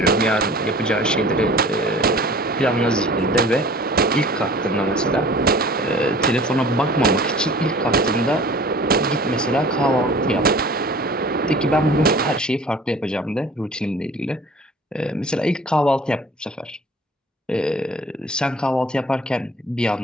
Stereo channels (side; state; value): both; normal; correlation 0.46